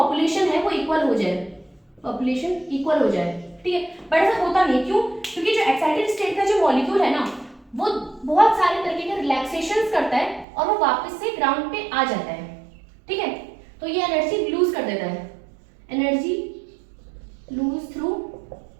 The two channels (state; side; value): drops out; left; at 10.5 s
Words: है वो इक्वल हो जाए, पॉपुलेशन इक्वल हो जाए, ठीक है। बट ऐसा होता नहीं, क्यों? क्योंकि जो एक्साइटेड स्टेट का जो मॉलिक्यूल है ना वो बहुत सारे तरीके के रिलैक्सेशंस करता है और वो वापस से ग्राउंड पे आ जाता है, ठीक है। तो ये एनर्जी लूज कर देता है, एनर्जी लूज थ्रू